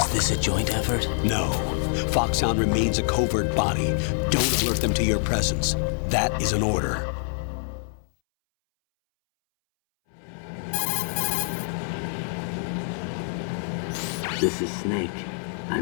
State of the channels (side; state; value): right; silent; 61 dB below the other